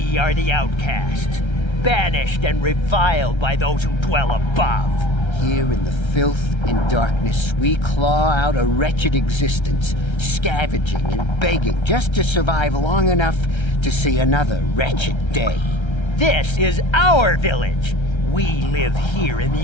are the outcasts, banished and reviled by those who dwell above. Here in the filth and darkness, we claw out a wretched existence, scavenging and begging just to survive long enough to see another wretched day. This is our village. We live here in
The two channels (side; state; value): right; late; 1.3 ms